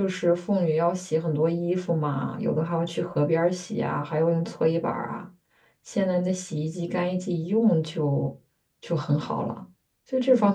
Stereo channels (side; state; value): both; identical; correlation 1.00